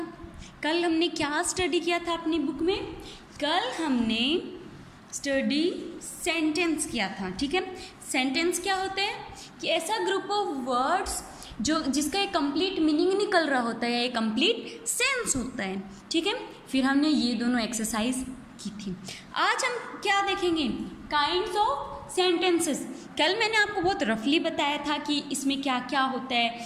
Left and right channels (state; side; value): identical; both; correlation 1.00